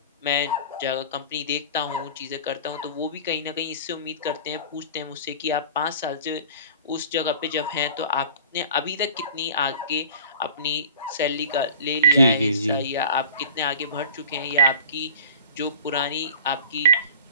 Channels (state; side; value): inverted; both; correlation -0.40